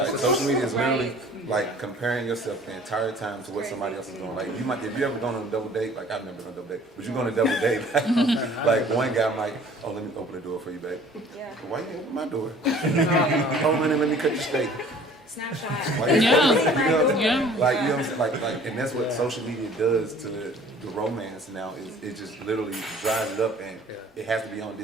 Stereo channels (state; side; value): normal; both; correlation 0.51